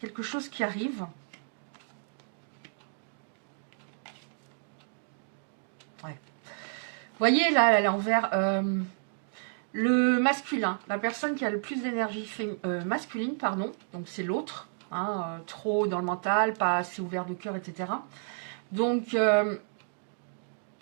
quelque chose qui arrive. Ouais. Vous voyez là, elle est envers le masculin, la personne qui a le plus d'énergie masculine, pardon, donc c'est l'autre. Hein, trop dans le mental, pas assez ouvert de cœur, etc. Donc,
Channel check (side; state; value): left; silent; digital silence